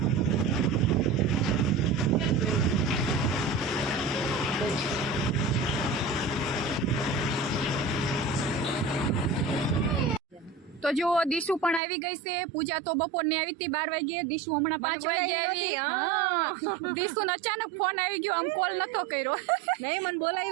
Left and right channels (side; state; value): left; drops out; at 11.8 s